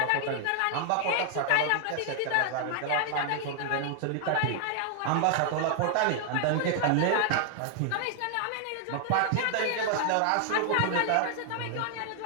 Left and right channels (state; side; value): different; both; correlation 0.00